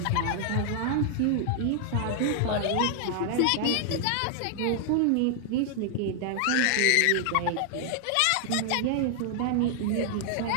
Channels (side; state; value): both; different; correlation -0.01